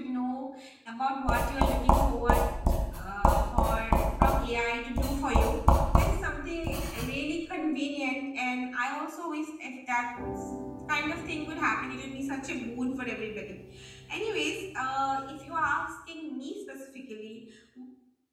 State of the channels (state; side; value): identical; both; correlation 1.00